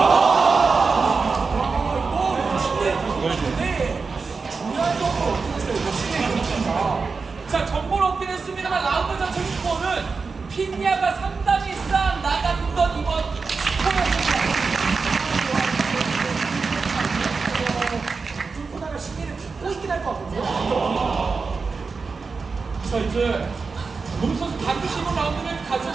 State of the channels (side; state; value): left; quieter; 4.6 dB